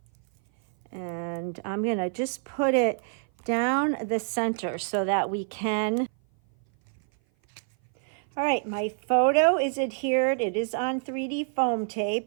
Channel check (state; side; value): silent; left; 57 dB below the other